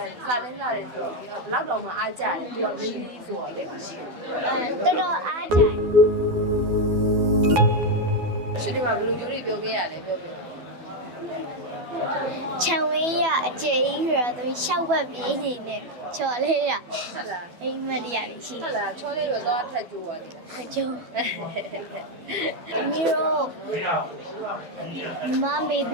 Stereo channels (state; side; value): late; left; 12 ms